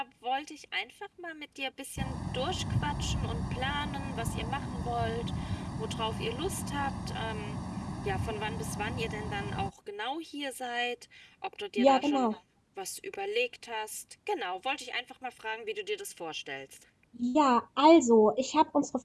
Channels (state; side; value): identical; both; correlation 1.00